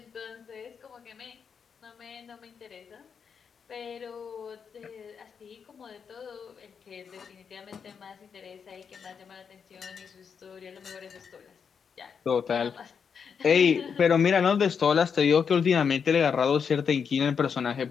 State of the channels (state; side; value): quieter; right; 6.5 dB